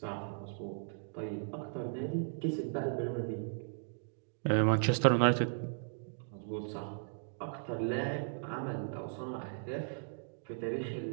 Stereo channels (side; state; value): left; silent; digital silence